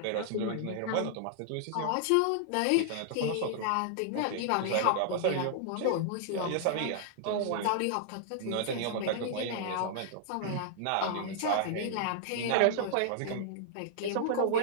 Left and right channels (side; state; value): both; different; correlation -0.01